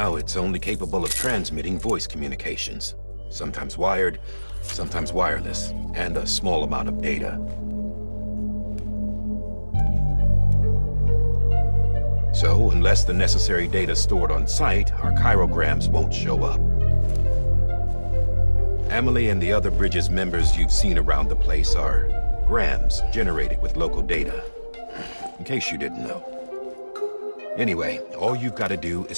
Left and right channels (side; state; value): both; inverted; correlation -1.00